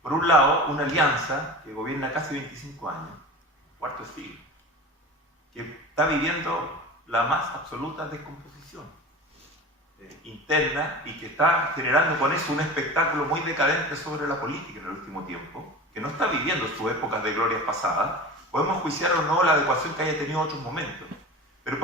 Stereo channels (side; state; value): both; normal; correlation 0.33